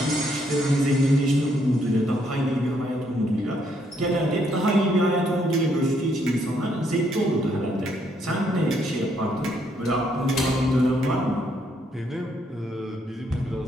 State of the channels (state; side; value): normal; both; correlation 0.72